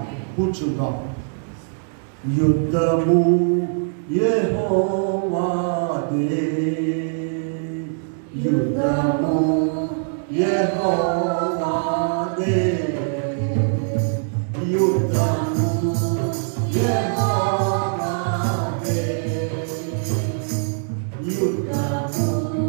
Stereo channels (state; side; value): silent; left; digital silence